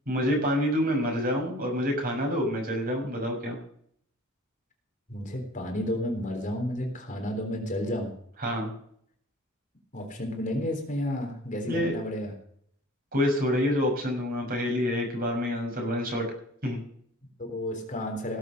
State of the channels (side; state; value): both; normal; correlation 0.47